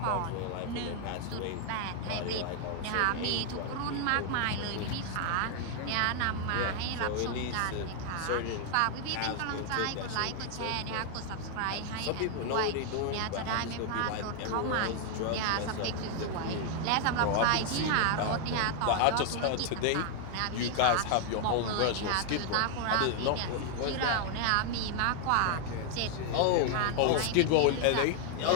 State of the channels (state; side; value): different; both; correlation 0.00